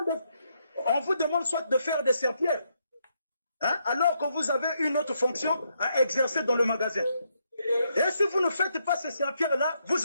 vous demande soit de faire des serpillères, hein, alors que vous avez une autre fonction à exercer dans le magasin. Et si vous ne faites pas ces serpillères-là,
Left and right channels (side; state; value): both; inverted; correlation -0.78